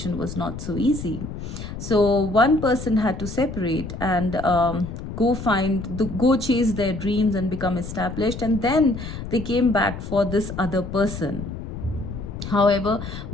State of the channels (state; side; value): noise; left; rumble, 8 dB below the sound